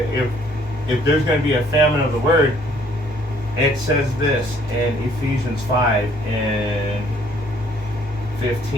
there's gonna be a famine of the word, it says this in Ephesians 5 and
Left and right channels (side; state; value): both; normal; correlation 0.62